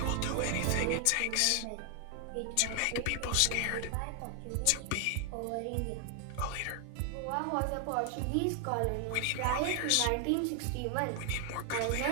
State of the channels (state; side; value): different; both; correlation 0.00